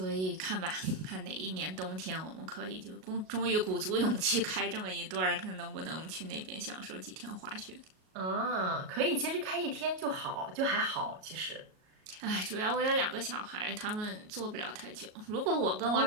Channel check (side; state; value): left; late; 38 ms